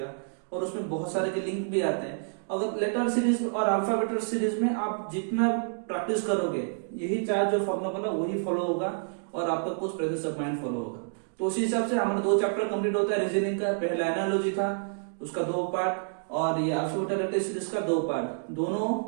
और उसमें बहुत सारे के लिंक भी आते हैं। अगर लेटर सीरीज और अल्फाबेट सीरीज में आप जितना प्रैक्टिस करोगे, यही 4 जो फॉर्मूला बोला वही फॉलो होगा, और आपका कुछ प्रेजेंस ऑफ माइंड फॉलो होगा। तो उसी हिसाब से हमारा 2 चैप्टर कंप्लीट होता है रीजनिंग का। पहला एनालॉजी था, उसका 2 पार्ट, और ये अल्फाबेट लेटर सीरीज का 2 पार्ट। दोनों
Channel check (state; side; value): silent; left; digital silence